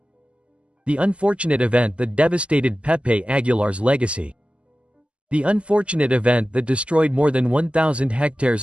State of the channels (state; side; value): late; left; 0.056 ms